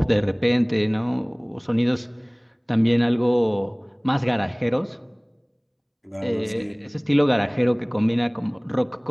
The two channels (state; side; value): identical; both; correlation 1.00